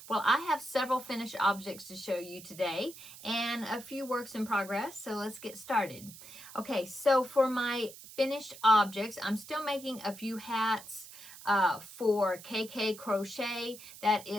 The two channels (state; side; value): noise; right; hiss, 16 dB below the sound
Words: Well, I have several finished objects to show you today and a few works in progress, so let's get started. Okay, so for my finished objects, I'm still making a few hats for KK Crochet. That